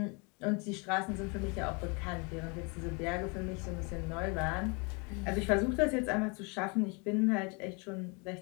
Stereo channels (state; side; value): quieter; right; 32.1 dB